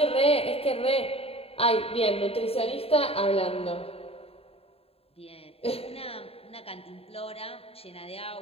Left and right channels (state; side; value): late; right; 0.28 ms